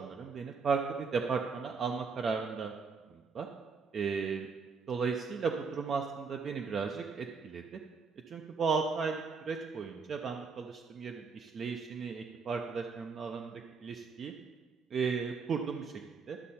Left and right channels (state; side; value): quieter; left; 5.1 dB